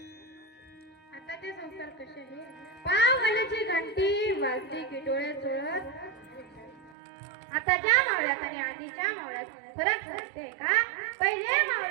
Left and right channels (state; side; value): drops out; left; at 7.0 s